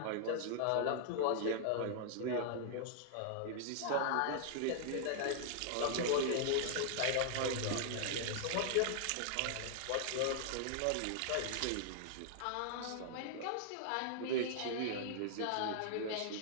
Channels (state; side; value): different; both; correlation -0.01